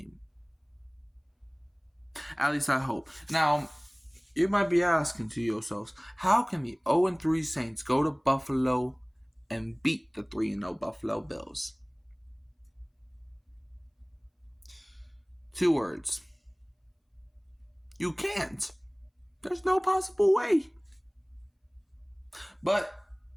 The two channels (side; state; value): both; identical; correlation 1.00